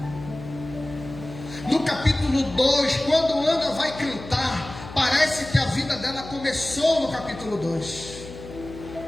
No capítulo 2, quando Ana vai cantar, parece que a vida dela começou no capítulo 2.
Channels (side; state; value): left; noise; hum, 14 dB below the sound